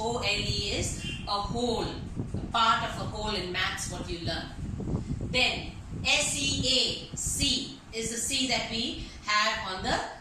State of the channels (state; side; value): identical; both; correlation 1.00